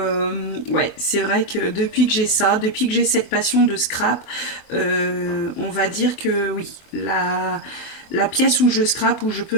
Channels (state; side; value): late; right; 24 ms